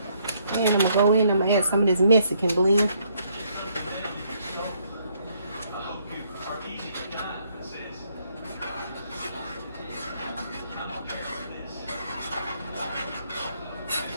And I'm gonna go in and I'm gonna add some of this Mexican blend.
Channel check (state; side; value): inverted; both; correlation -0.70